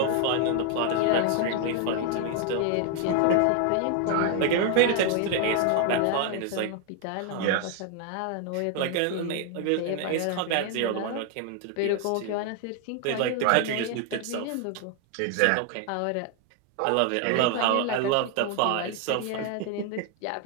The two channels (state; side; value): different; both; correlation 0.00